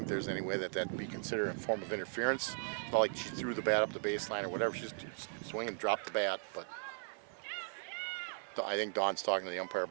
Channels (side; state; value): left; silent; digital silence